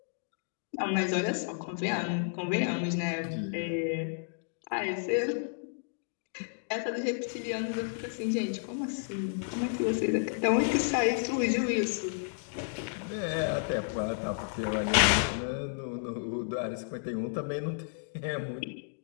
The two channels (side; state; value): right; silent; digital silence